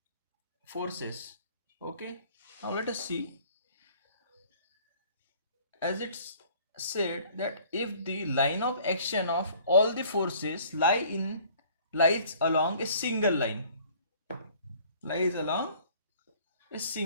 forces. Okay, now let us see. As it's said that if the line of action of all the forces lies along a single line, lies along a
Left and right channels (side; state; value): both; inverted; correlation -0.54